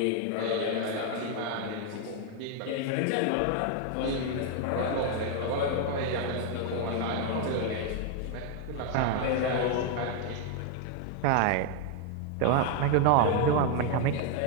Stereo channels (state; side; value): different; both; correlation 0.00